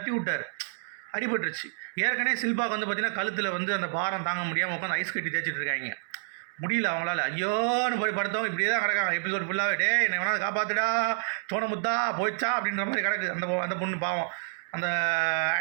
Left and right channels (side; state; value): left; silent; 59 dB below the other